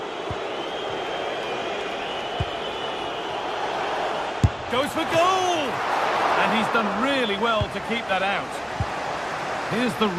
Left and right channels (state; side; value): identical; both; correlation 1.00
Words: Goes for goal! And he's done really well to keep that out. Here's the